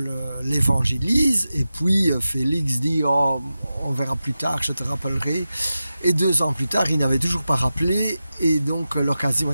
l'évangélise et puis Félix dit oh, on verra plus tard, je te rappellerai, et 2 ans plus tard il n'avait toujours pas rappelé et donc l'occasion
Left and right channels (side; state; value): both; inverted; correlation -0.93